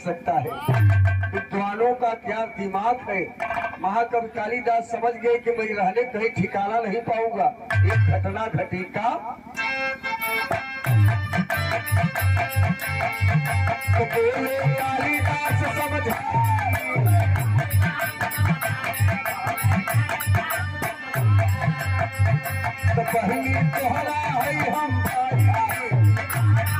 है। विद्वानों का क्या दिमाग है। महाकवि कालिदास समझ गए कि मैं रहने कहीं ठिकाना नहीं पाऊंगा। एक घटना घटी। का तो बोले कालिदास समझ तो पहली तोहरा है हम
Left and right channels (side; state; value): both; identical; correlation 1.00